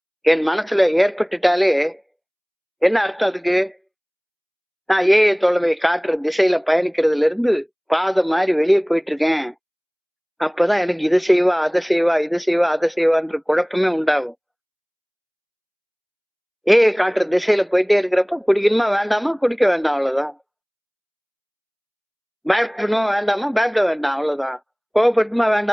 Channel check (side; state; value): both; identical; correlation 1.00